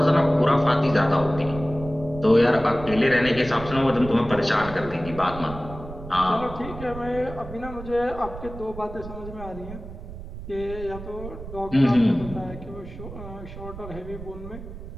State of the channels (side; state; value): right; noise; rumble, 12 dB below the sound